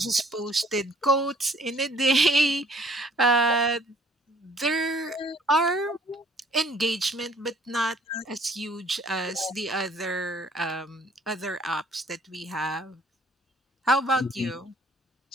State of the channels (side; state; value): both; normal; correlation 0.58